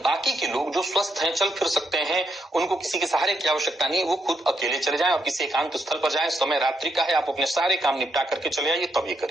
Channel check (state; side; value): normal; both; correlation 0.79